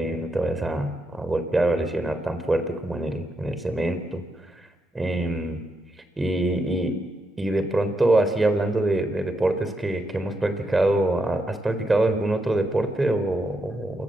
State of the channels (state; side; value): normal; both; correlation 0.81